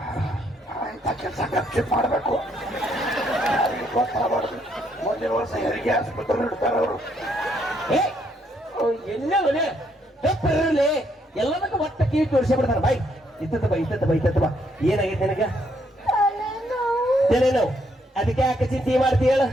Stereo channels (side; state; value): both; normal; correlation 0.72